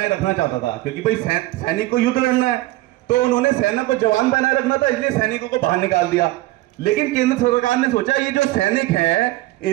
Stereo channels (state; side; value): quieter; left; 18.0 dB